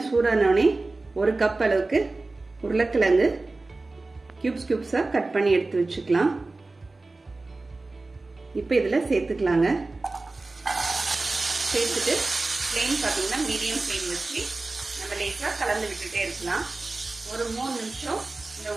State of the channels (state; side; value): quieter; left; 3.3 dB